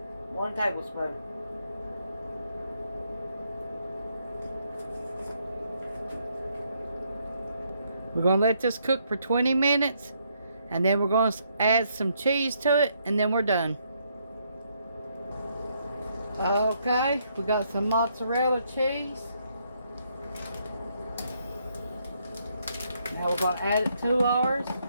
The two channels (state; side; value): inverted; both; correlation -0.73